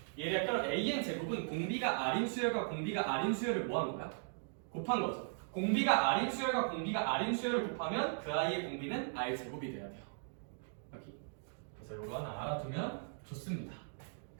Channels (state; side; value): silent; left; digital silence